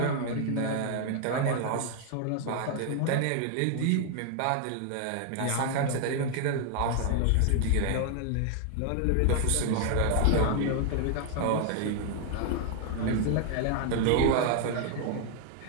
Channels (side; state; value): both; different; correlation 0.00